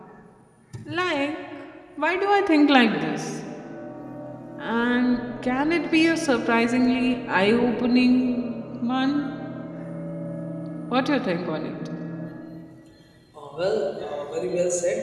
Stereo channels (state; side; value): identical; both; correlation 1.00